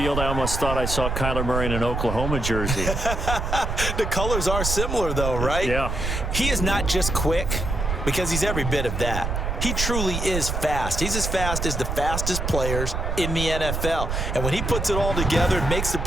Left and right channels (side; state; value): right; noise; rumble, 2 dB below the sound